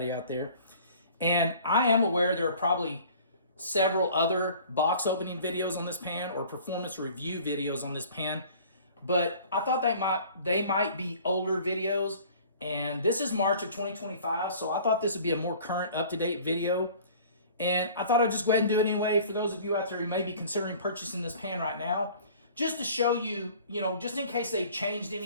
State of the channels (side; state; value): both; inverted; correlation -0.49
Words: out there. And I am aware there are probably several other box opening videos on this pan or performance review videos on this pan, but I thought they might be older videos, and this is March of 2025, so I thought this would be a more current, up-to-date video, and I thought I'd just go ahead and do it anyway for those of you out there who may be considering purchasing this pan right now, just to show you, just in case they changed